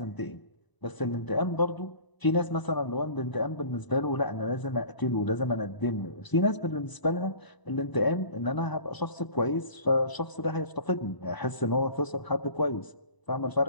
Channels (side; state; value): right; late; 1.0 ms